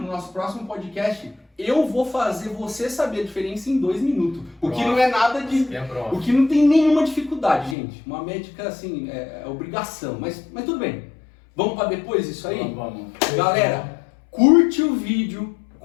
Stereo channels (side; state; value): right; drops out; at 7.8 s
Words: nosso próximo podcast, eu vou fazer você saber a diferença em 2 minutos. O que não é nada de... O que não tem nenhuma dificuldade, gente. Uma médica, assim, é obrigação. Mas tudo bem. Vamos para depois isso aí? Vamos. Galera, curte o vídeo,